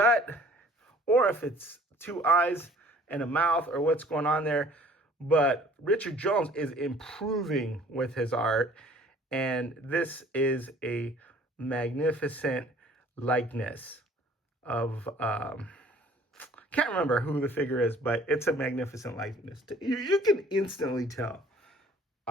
or if it's 2 eyes and a mouth, or what's going on there. But Richard Jones is improving with his art, and this is a magnificent likeness of can't remember who the figure is, but it's a magnificent likeness. You can instantly tell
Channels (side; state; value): both; normal; correlation 0.53